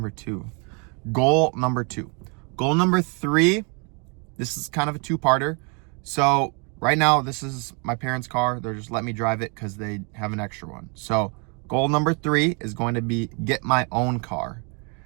2. Goal number 2. Goal number 3, this is kind of a 2-parter. So right now, this is my parents' car. They're just letting me drive it because they have an extra one. So goal number 3 is going to be get my own car.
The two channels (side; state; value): left; quieter; 34.7 dB